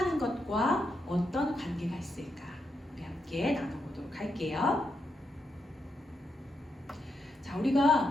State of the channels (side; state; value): both; normal; correlation 0.83